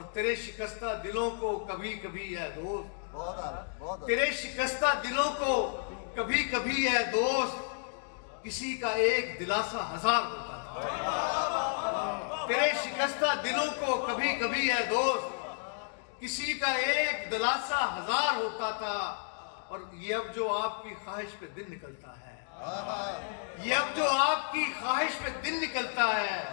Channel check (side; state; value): right; silent; 56 dB below the other